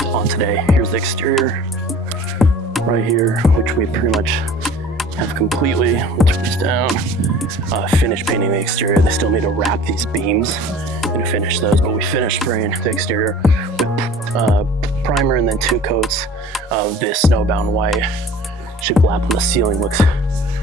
on today. Here's the exterior right here, which we pretty much have completely, we'll turn this down, finished painting the exterior. They still need to wrap these beams and finish those, but we finished spraying the exterior with primer and then 2 coats of this snowbound white. Shiplap on the ceiling looks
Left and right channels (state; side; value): normal; both; correlation 0.45